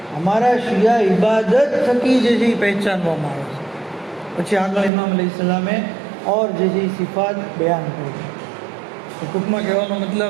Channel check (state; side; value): drops out; left; at 4.9 s